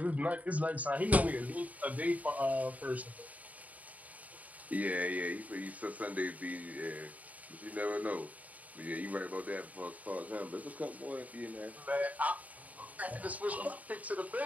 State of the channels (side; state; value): left; late; 0.072 ms